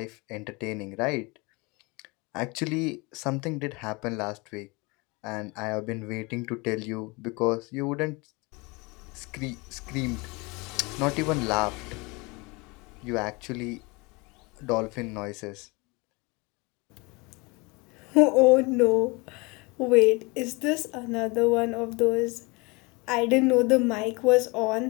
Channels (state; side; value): quieter; right; 26.7 dB